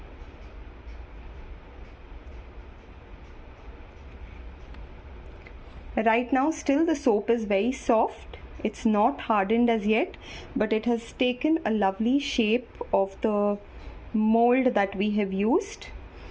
Right now still the soap is very soft. It's not hardened as yet, but it has taken a lovely shape of the mold that we have used.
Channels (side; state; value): both; identical; correlation 1.00